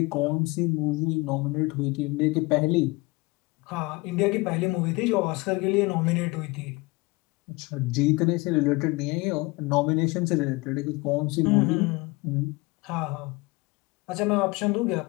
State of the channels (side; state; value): right; quieter; 24.4 dB